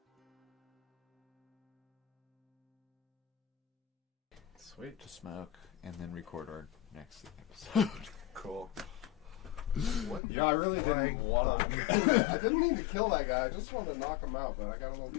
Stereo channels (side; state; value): right; drops out; at 10.2 s